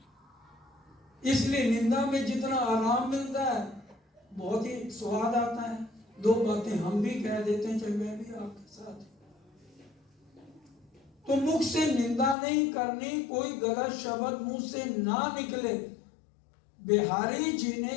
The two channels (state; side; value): drops out; right; at 12.4 s